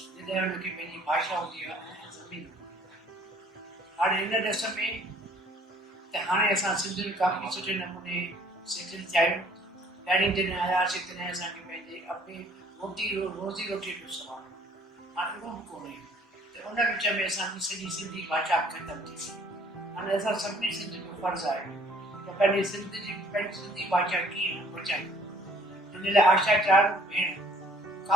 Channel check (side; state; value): both; normal; correlation 0.58